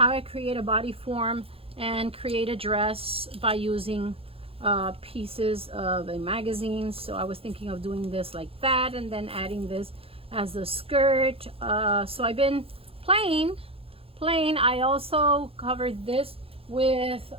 I create a body form and create a dress by using pieces of a magazine. So I was thinking of doing this like that, and then adding this as a skirt. So I've been playing. I also covered this with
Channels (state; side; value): late; left; 0.27 ms